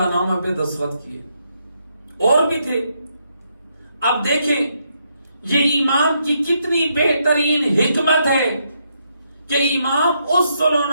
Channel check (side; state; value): both; inverted; correlation -0.77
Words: نامہ پہ دستخط کیے۔ اور بھی تھے۔ اب دیکھیں یہ امام کی کتنی بہترین حکمت ہے کہ امام اس صلح